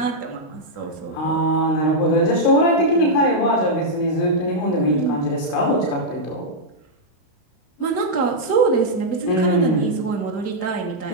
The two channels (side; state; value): right; late; 32 ms